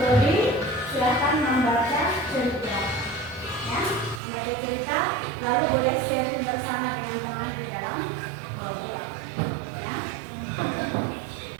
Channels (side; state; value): left; drops out; at 4.2 s